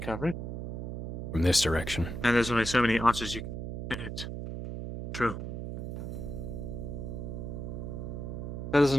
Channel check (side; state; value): right; noise; hum, 5 dB below the sound